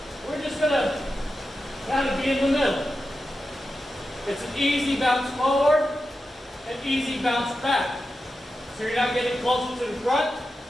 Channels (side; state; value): both; normal; correlation 0.90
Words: We're just going to kind of be in the middle. It's an easy bounce forward and easy bounce back. So you're not getting closer to the front.